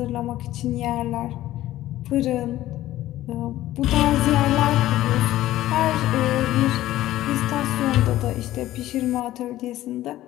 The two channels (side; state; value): right; quieter; 14.7 dB